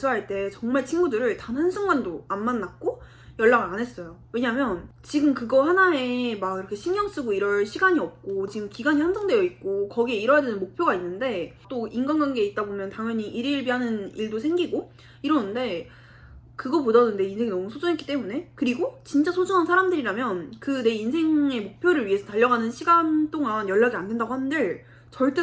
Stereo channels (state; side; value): identical; both; correlation 1.00